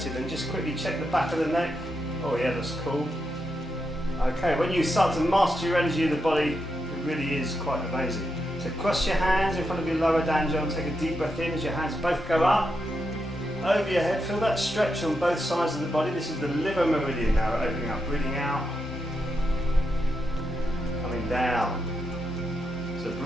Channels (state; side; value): normal; both; correlation 0.84